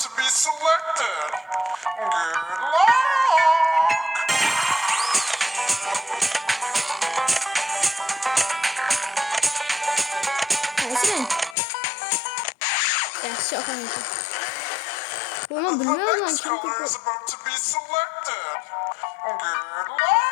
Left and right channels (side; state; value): right; drops out; at 11.6 s